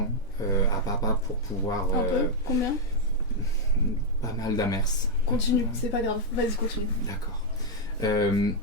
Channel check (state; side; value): normal; both; correlation -0.02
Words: à papa pour pouvoir... Un peu? Combien? Pas mal d'amers. Continue, c'est pas grave. Vas-y, continue. D'accord.